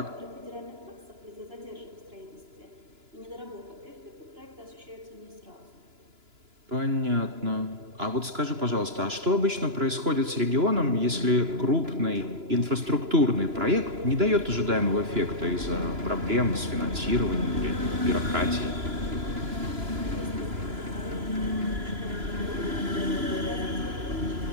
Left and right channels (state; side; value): late; left; 2.9 ms